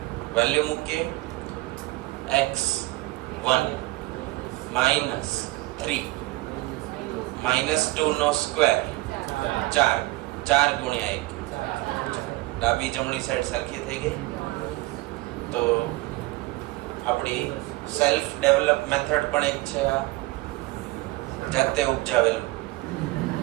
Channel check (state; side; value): quieter; left; 20.3 dB